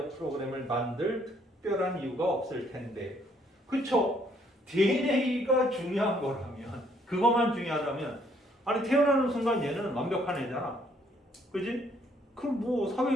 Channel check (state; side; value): normal; both; correlation 0.67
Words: 프로그램을 만들 특별한 이유가 없을 텐데. 그쵸? DNA가 중요한 거라면, 그것만 중요하다면, 아니 태어나는 순간 얘는 완벽한 애잖아. 그지? 그럼 뭐